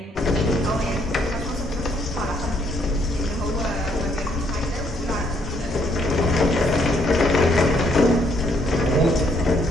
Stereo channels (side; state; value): both; normal; correlation 0.69